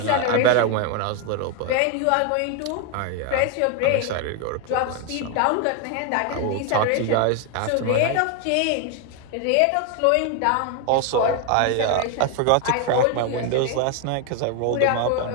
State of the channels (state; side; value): different; both; correlation 0.01